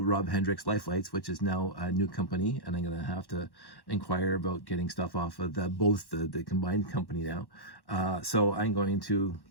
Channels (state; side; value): late; right; 1.1 ms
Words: Rob Hendricks Life Lights, which is now a new company, and I'm gonna have to inquire about getting stuff off of both the combined company now. So I'm going to